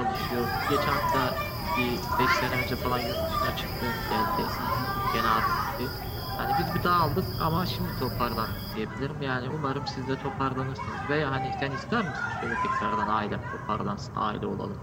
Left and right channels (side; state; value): both; identical; correlation 1.00